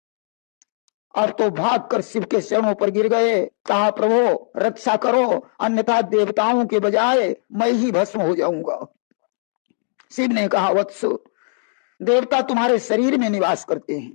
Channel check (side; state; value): right; silent; digital silence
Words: अब तो भागकर शिव के चरणों पर गिर गए। कहा प्रभु रक्षा करो, अन्यथा देवताओं के बजाय मैं ही भस्म हो जाऊंगा। शिव ने कहा वत्स, देवता तुम्हारे शरीर में निवास करते